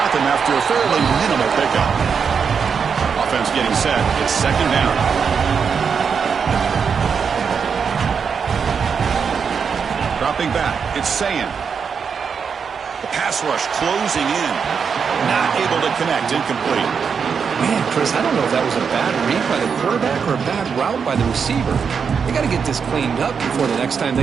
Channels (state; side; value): quieter; left; 6.3 dB